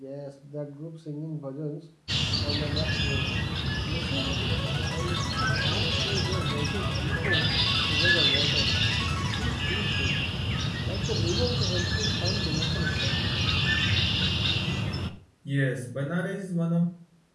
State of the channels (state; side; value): identical; both; correlation 1.00